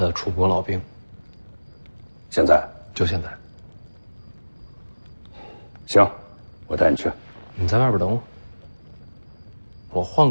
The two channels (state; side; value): inverted; both; correlation -1.00